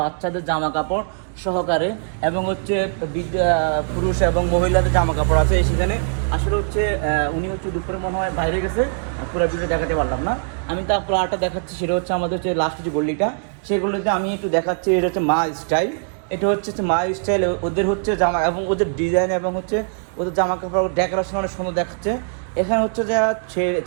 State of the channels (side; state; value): left; silent; digital silence